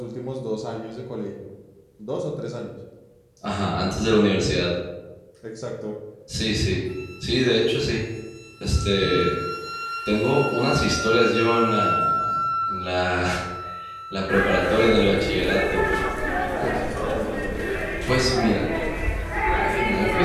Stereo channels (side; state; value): both; identical; correlation 1.00